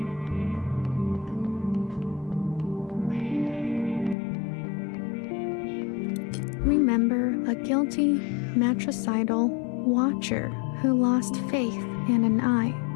Remember a guilty, matricidal watcher who lost faith in an eye.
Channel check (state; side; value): drops out; right; at 4.2 s